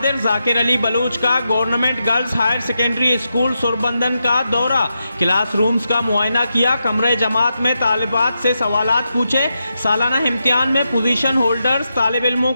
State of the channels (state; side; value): inverted; both; correlation -0.87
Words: Zakir Ali Baloch का government girls higher secondary school Surbandan का दौरा। क्लासरूम्स का मुआयना किया। कमरे जमात में तालिबात से सवालात पूछे। सालाना इम्तिहान में पोजीशन होल्डर्स तालिब इल्मों